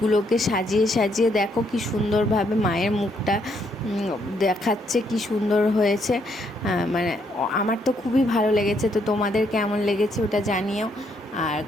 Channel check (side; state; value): both; normal; correlation 0.73